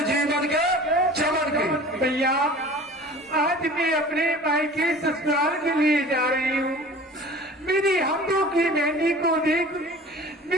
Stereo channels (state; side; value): normal; both; correlation 0.43